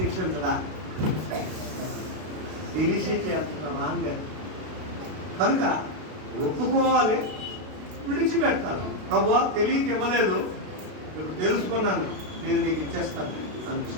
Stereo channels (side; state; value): left; late; 32 ms